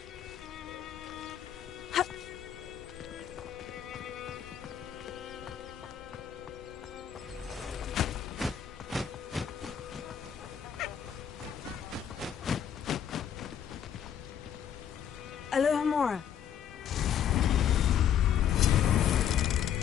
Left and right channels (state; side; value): quieter; right; 9.1 dB